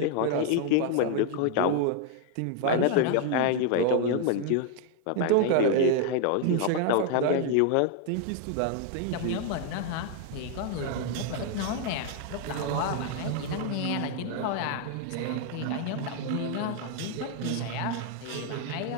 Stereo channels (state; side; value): different; both; correlation 0.00